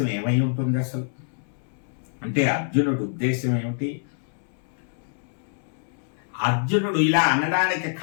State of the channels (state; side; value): silent; right; 60 dB below the other